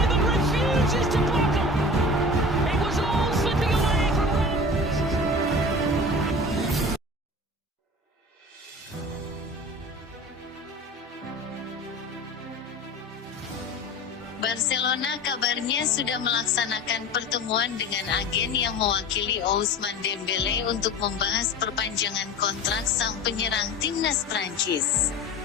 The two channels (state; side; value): normal; both; correlation 0.36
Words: Barcelona kabarnya sudah melaksanakan pertemuan dengan agen yang mewakili Ousmane Dembélé untuk membahas perpanjangan kontrak sang penyerang timnas Prancis.